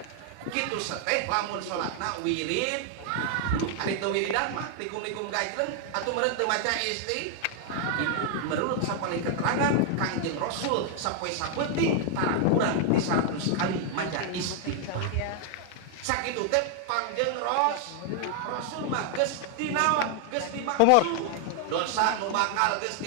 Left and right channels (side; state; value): both; different; correlation 0.00